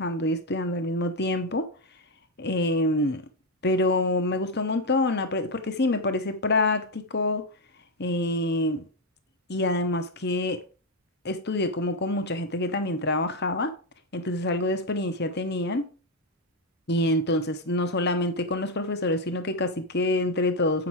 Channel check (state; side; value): normal; both; correlation 0.05